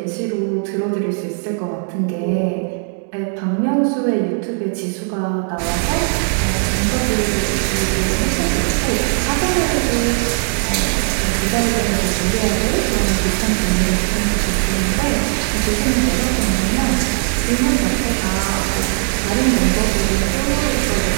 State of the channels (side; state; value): left; silent; 56 dB below the other